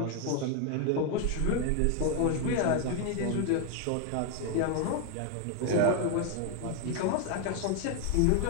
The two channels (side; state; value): both; different; correlation 0.01